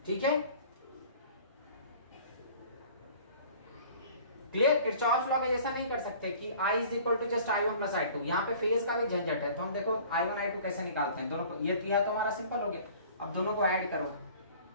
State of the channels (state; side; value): inverted; both; correlation -0.48